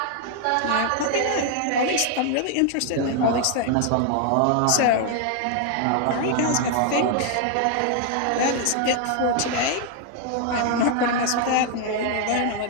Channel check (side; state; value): both; different; correlation 0.00